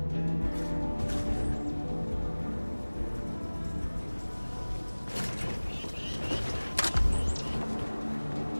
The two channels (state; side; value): inverted; both; correlation -1.00